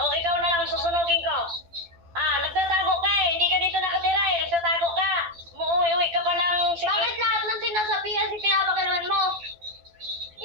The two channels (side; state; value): left; late; 12 ms